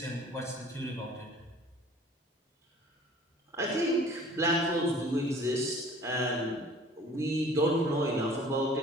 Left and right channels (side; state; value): both; normal; correlation 0.50